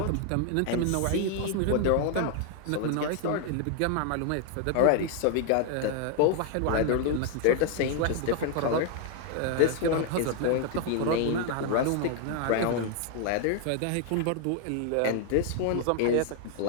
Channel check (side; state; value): both; different; correlation 0.00